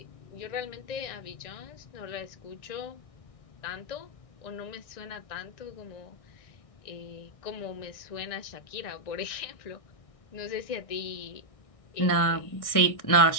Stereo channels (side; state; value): right; late; 1.6 ms